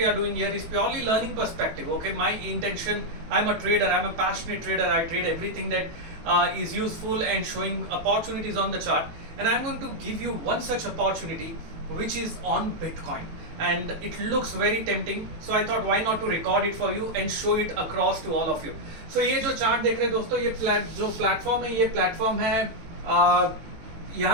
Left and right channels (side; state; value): left; late; 18 ms